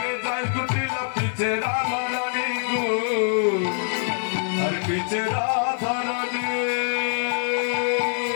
যাই কুটিলা পিছে রাধা রানী গো আর পিছে রাধা রানী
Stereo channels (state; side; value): silent; right; digital silence